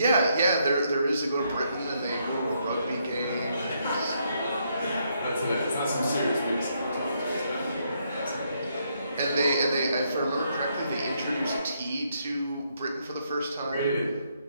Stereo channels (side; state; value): both; inverted; correlation -0.75